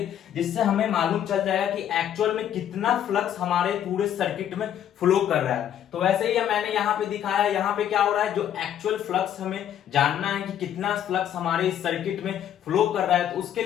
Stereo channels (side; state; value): right; quieter; 10.2 dB